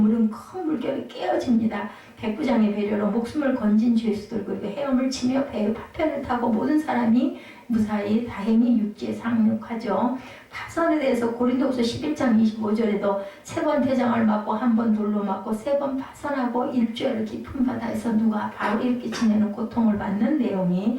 큰 물결에 깨어집니다. 백부장의 배려로 목숨을 건진 죄수들 그리고 헤엄을 치며 배의 파편을 타고 모든 사람이 무사히 다행히 육지에 상륙하죠. 파선에 대해서 고린도후서 11장 25절에도 3번 태장을 맞고 1번 돌로 맞고 3번 파선하고 일주일 깊은 바다에서 누가 바울이 이렇게 지내는 고통을 받는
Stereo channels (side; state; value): both; identical; correlation 1.00